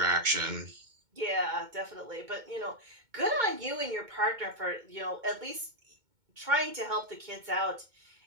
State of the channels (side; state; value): left; late; 2.2 ms